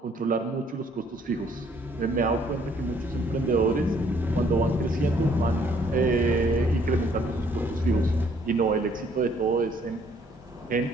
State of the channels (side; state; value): both; normal; correlation 0.64